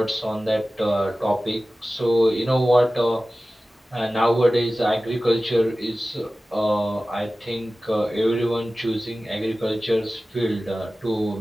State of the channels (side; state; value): both; normal; correlation 0.96